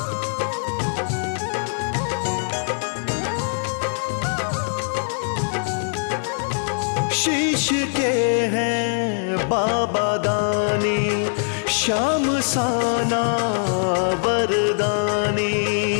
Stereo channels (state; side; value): silent; right; 64 dB below the other